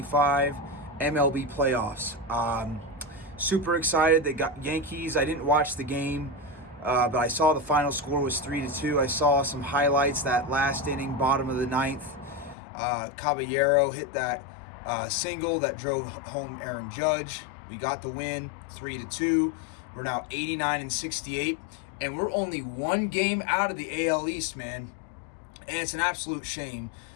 MLB playoffs. Super excited. They got Yankees. I didn't watch the game, but I saw the final score was 3-2. I saw some highlights that last inning, bottom of the ninth. Caballero hit that single that drove home Aaron Judge. We got the win, 3-2. We're now 89-68, and we're only one game out of the AL East, man. And it's an absolute shame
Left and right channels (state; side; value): drops out; right; at 12.6 s